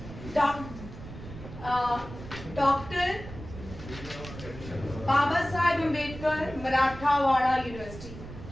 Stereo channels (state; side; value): noise; right; rumble, 13 dB below the sound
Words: डॉक्टर बाबा साहेब अम्बेडकर मराठावाड़ा यूनिवर्सिटी,